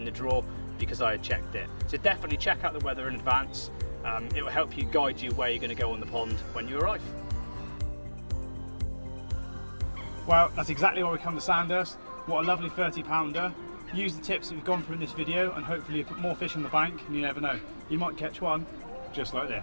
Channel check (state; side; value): inverted; both; correlation -1.00